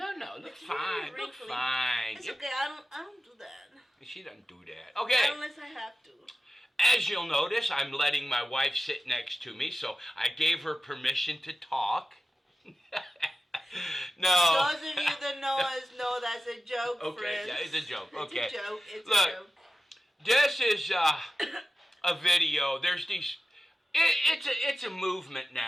look It's fine. really Look wrinkly. fine. It's okay. I don't do that. She doesn't do that. Okay. Unless I have to. As you'll notice, I'm letting my wife sit next to me, so I gave her permission to talk. No. Those of you that know us know that's a joke, Okay, friends. yeah, it's a joke. Okay. It's a joke. It's Look, a joke. This is a video. There's these. It's a movement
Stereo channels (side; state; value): both; normal; correlation 0.95